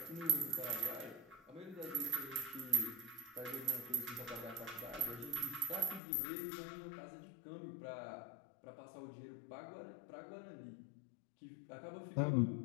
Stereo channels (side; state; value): right; drops out; at 6.0 s